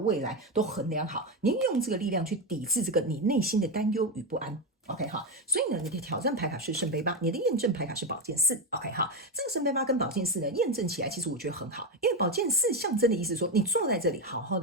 来都衡量好，你用这个力量去抵制这个你内心的担忧与不安。OK 所以呢，你的挑战牌卡是圣杯8，你的验证牌卡是宝剑4。OK 这个圣杯8跟宝剑4呢，验证起来其实我觉得很好，因为宝剑4象征的意思说，你坐在这里好好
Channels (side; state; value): both; normal; correlation 0.11